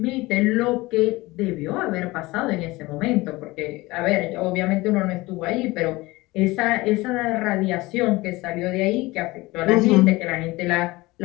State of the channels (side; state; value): right; quieter; 20.9 dB